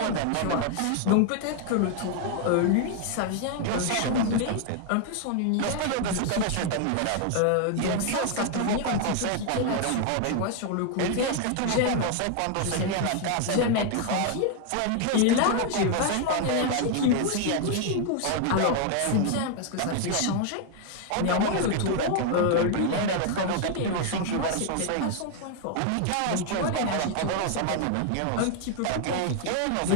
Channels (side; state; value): both; different; correlation 0.00